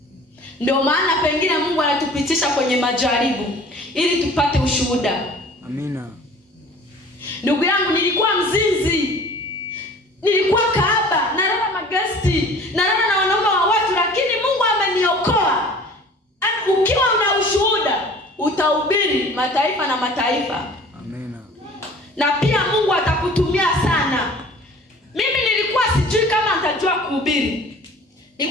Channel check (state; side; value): normal; both; correlation 0.46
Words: Ndio maana pengine Mungu anatupitisha kwenye majaribu ili tupate ushuhuda. Amina. Ndugu yangu, nilikuwa mzinzi, nilikuwa kahaba, nalala magesti, nalala na wanaume wa watu, lakini Mungu ameniokoa. Ukiwa una ushuhuda, utahubiri mataifa na mataifa. Amina. Na pia Mungu atakutumia sana. Mimi nilikuwa sijui kama nitajua kuhubiri.